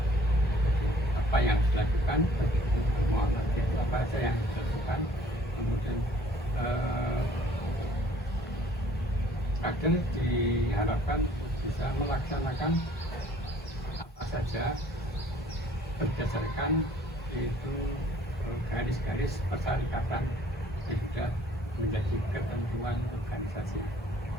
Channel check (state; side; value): normal; both; correlation 0.57